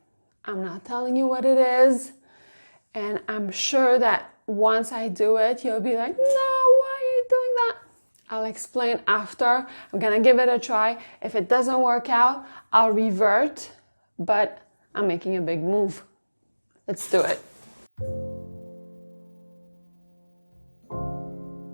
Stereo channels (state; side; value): inverted; both; correlation -1.00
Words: I'm not telling you what it is, and I'm sure that once I do it, you'll be like, no, why are you doing that? I'll explain after. I'm gonna give it a try. If it doesn't work out, I'll revert, but I'm making a big move. Let's do it.